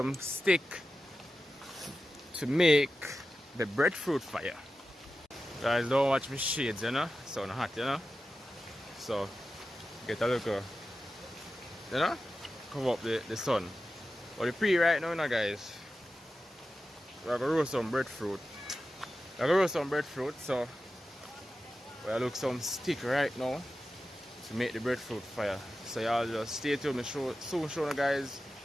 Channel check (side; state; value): both; normal; correlation 0.92